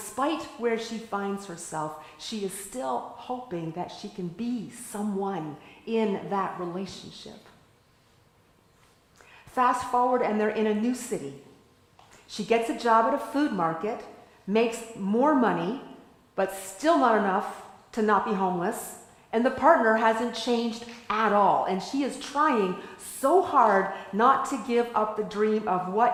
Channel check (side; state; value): both; identical; correlation 1.00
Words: where she finds herself, she is still hoping that she can be someone in that relationship. Fast forward, and they're in a new city. She gets a job at a food market, makes more money, but still not enough to not be homeless. And the partner hasn't changed at all. And she is trying so hard not to give up the dream of